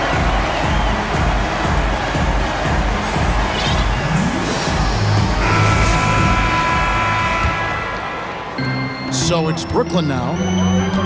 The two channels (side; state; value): both; identical; correlation 1.00